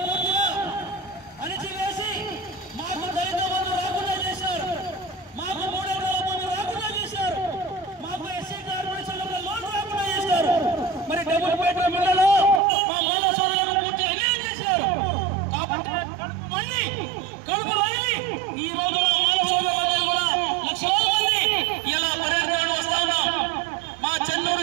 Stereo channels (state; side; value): drops out; left; at 12.6 s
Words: పూర్తిగా అణిచివేసి మాకు దళిత బంధు రాకుండా చేశారు, మాకు 3 ఎకరాల బంధు రాకుండా చేశారు, మాకు ఎస్సీ కార్పొరేషన్లో లోన్ రాకుండా చేశారు. మరి డబుల్ బెడ్రూమ్ ఇళ్లలో మా మాల సోదరులను పూర్తిగా అన్యాయం చేశారు. కాబట్టి కడుపు వదిలి ఈ రోజు మా మాల సోదరులందరూ కూడా లక్షలాది మంది ఇలా పర్యటనలు వస్తా ఉన్నాం. మా